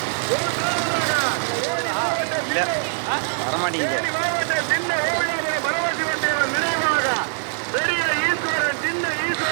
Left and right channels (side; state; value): left; silent; digital silence